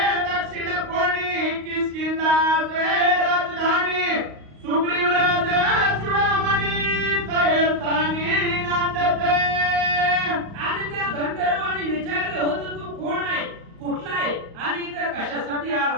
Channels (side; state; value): left; late; 35 ms